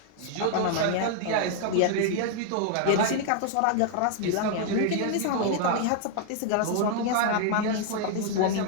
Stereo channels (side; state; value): both; different; correlation 0.00